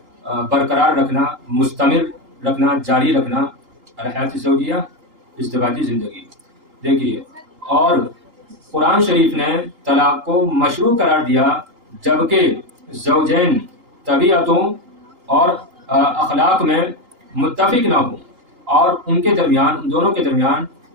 برقرار رکھنا، مستمر رکھنا، جاری رکھنا. الحیات الزوجیہ ازدواجی زندگی. دیکھیے اور قرآن شریف نے طلاق کو مشروع قرار دیا جبکہ زوجین طبیعتوں اور اخلاق میں متفق نہ ہوں اور ان کے درمیان، ان دونوں کے درمیان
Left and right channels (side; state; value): left; late; 2.9 ms